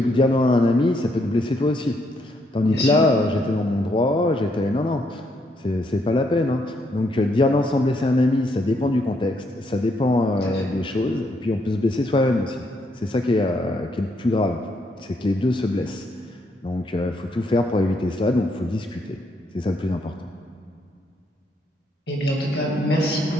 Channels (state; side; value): normal; both; correlation 0.74